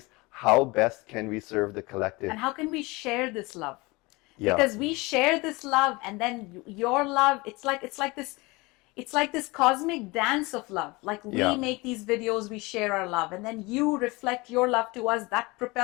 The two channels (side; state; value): right; quieter; 24.2 dB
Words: how best can we serve the collective? And how can we share this love? Yeah. Because we share this love, and then your love, it's like this cosmic dance of love. Like we make these videos, we share our love, and then you reflect your love to us. That